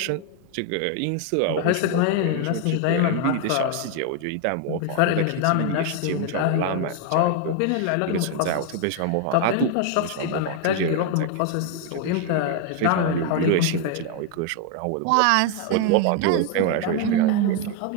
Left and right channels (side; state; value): both; different; correlation 0.01